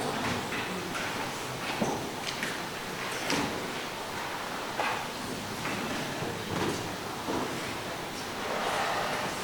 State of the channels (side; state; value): both; identical; correlation 1.00